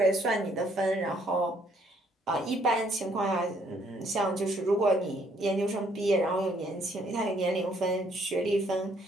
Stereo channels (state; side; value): normal; both; correlation 0.66